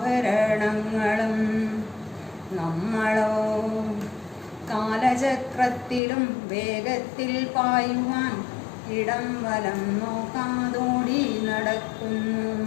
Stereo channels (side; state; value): right; drops out; at 6.0 s